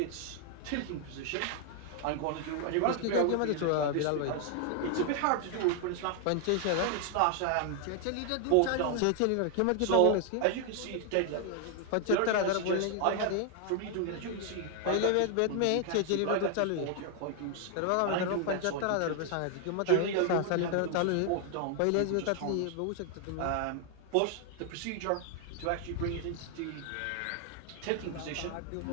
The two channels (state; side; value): different; both; correlation 0.00